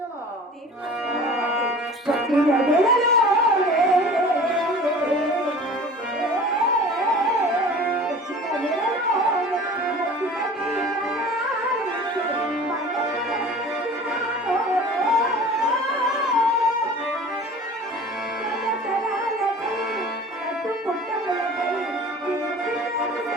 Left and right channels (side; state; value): both; normal; correlation 0.42